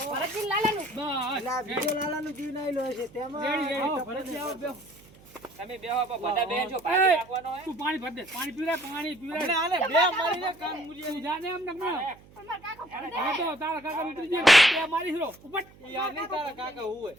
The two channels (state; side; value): noise; right; hum, 24 dB below the sound